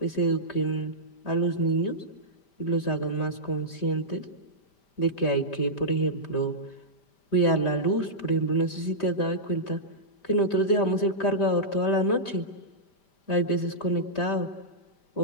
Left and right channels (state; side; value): late; right; 5.1 ms